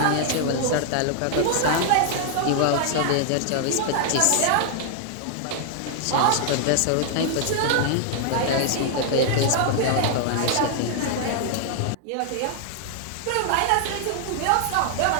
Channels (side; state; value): both; different; correlation 0.00